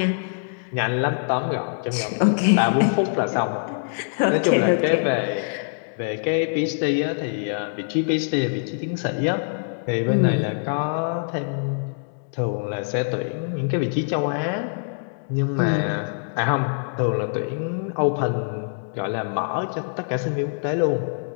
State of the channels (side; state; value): right; silent; digital silence